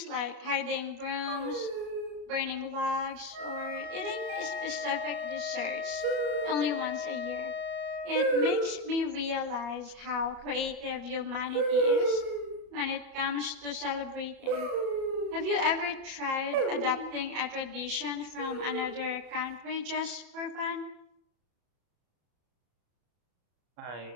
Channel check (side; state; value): left; late; 34 ms